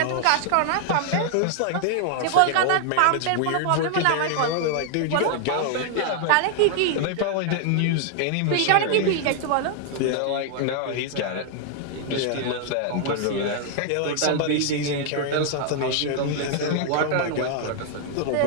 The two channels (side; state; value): both; different; correlation 0.00